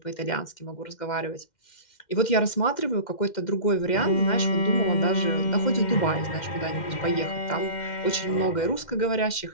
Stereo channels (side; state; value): right; late; 2.1 ms